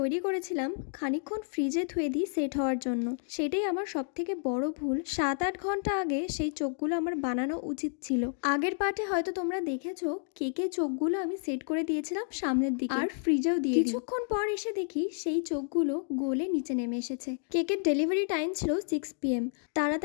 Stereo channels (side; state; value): right; silent; digital silence